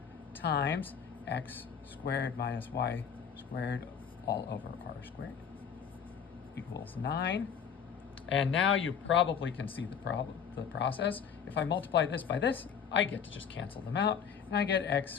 times x squared minus y squared all over r squared equals 9. And now you probably can see the process. If I multiply this by this, I get to just cancel them out, and I get x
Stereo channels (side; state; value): right; quieter; 7.4 dB